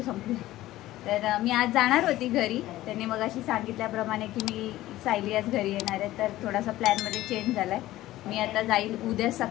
संपले. तर मी आज जाणार होती घरी. त्यांनी मग अशी सांगितल्याप्रमाणे की मी सायली आज घरी येणार आहे. तर थोडासा प्लॅनमध्ये चेंज झाला आहे. मी आता जाईल उद्या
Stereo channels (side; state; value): right; quieter; 15.8 dB